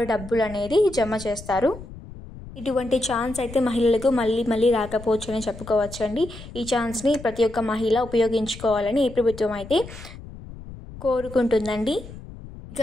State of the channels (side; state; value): left; noise; rumble, 15 dB below the sound